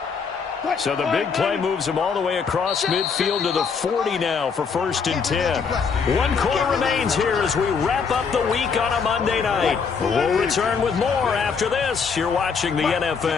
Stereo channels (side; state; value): right; quieter; 5.8 dB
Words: So the big play moves him all the way across midfield to the 40 now for 1st and 10. 1 quarter remains here as we wrap up the week on a Monday night. We'll return with more after this. You're watching the